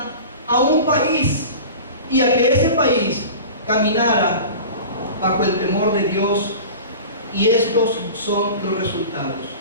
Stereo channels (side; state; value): both; inverted; correlation -0.36